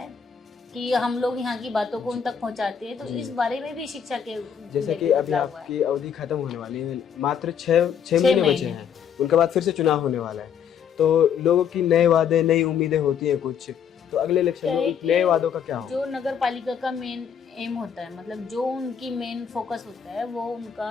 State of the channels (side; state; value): right; quieter; 7.8 dB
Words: है कि हम लोग यहाँ की बातों को उन तक पहुँचाते हैं। तो इस बारे में भी शिक्षा के जैसे कि लेके अभी बदलाव हुआ है। आपकी अवधि खत्म होने वाली है, मात्र 6 महीने बचे हैं, उनके बाद फिर से चुनाव होने वाला है। तो लोगों की नए वादे, नई उम्मीदें होती हैं कुछ, तो अगले इलेक्शन क्या है में कि नए वादों का क्या होगा? जो नगर पालिका का मेन एम होता है, मतलब जो उनकी मेन फोकस होता है, वो